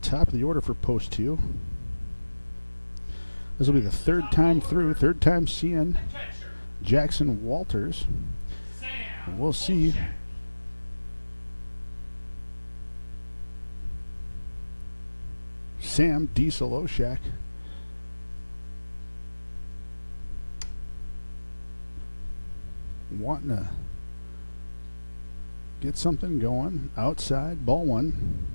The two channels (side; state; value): both; inverted; correlation -1.00